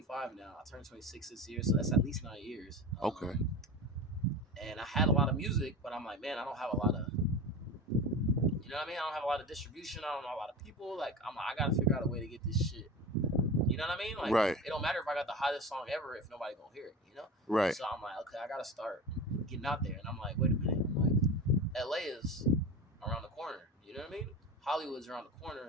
now. I turned 26 this year, so that's at least 9 years. Okay. And I had a lot of music, but I'm like, man, I don't have a lot of, I don't have a lot of distribution. I don't know a lot of people. Like, I got to figure out a way to get this shit. You know what I mean? Like, right. It don't matter if I got the hottest song ever if nobody gonna hear it, Right. So I'm like, okay, I got to start getting out there. And I'm like, wait a minute. I'm like, LA is around the corner. You know what I mean? Hollywood's around the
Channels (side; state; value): both; normal; correlation 0.30